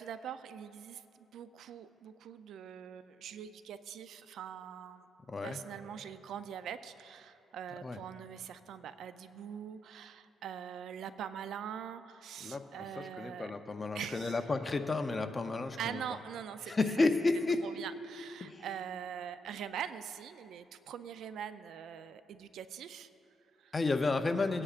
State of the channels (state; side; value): normal; both; correlation 0.82